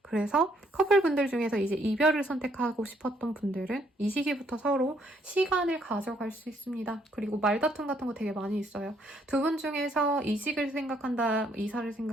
그래서 커플분들 중에서 이제 이별을 선택하고 싶었던 분들은 이 시기부터 서로 시간을 가져갈 수 있습니다. 그리고 말다툼 같은 거 되게 많이 있어요. 두 분 중에서 이직을 생각한다, 이사를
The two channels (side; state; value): both; normal; correlation 0.69